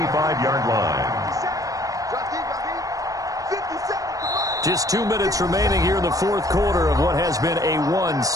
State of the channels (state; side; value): late; left; 0.17 ms